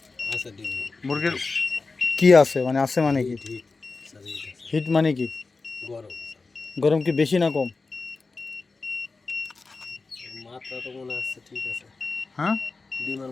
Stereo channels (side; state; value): right; quieter; 3.9 dB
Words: মুরগির কি আছে মানে আছে মানে কি? হিট মানে কি? গরম কি বেশি না কম? মাত্রা তো মনে হচ্ছে ঠিক আছে। হ্যাঁ, ডিমের